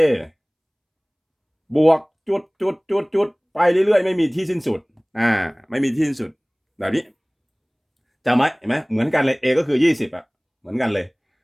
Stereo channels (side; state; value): both; identical; correlation 1.00